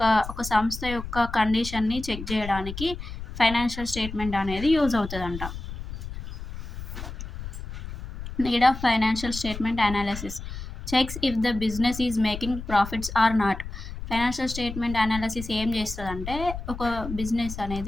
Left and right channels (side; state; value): left; noise; rumble, 9 dB below the sound